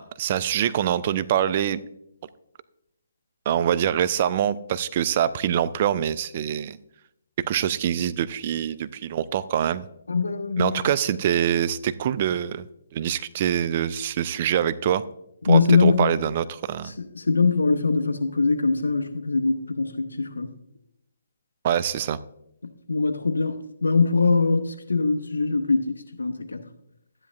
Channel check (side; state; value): both; inverted; correlation -0.69